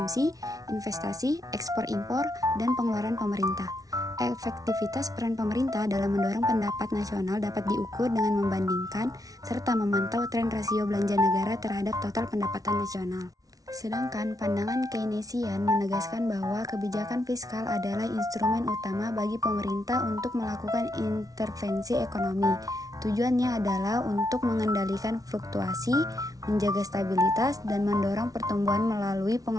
investasi, ekspor-impor, dan pengeluaran pemerintah. Efektivitas peran pemerintah dalam mendorong pendapat nasional dapat diukur dengan membandingkan serta memantau tren rasio belanja negara terhadap total pendapatan nasional. Sedangkan pandangan Keynesian menegaskan bahwa kebijakan fiskal adalah instrumen utama bagi pemerintah untuk melakukan intervensi ekonomi. Tujuannya adalah untuk mengendalikan fluktuasi, menjaga stabilitas, dan mendorong pertumbuhan melalui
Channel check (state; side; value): late; left; 0.18 ms